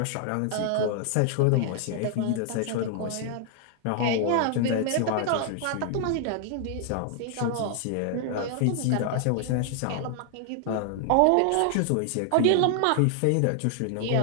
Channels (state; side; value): different; both; correlation 0.00